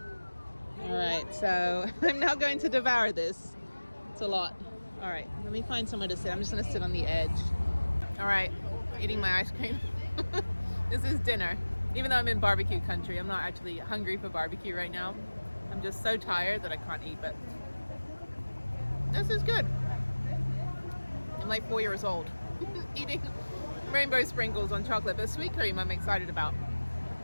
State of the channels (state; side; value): inverted; both; correlation -1.00